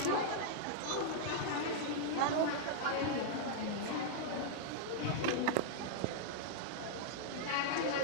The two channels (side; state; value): both; different; correlation -0.01